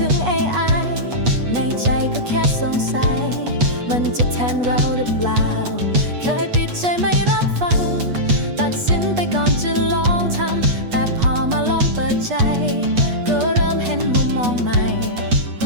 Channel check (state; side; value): late; left; 8.3 ms